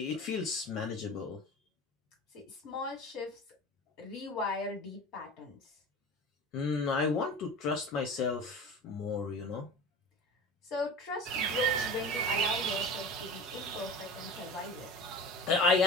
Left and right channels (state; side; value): normal; both; correlation 0.34